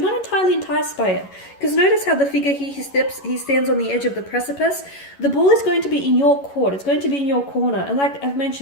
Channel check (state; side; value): late; right; 11 ms